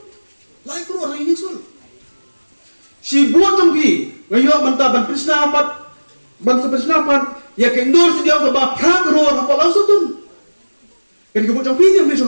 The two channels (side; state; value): both; inverted; correlation -1.00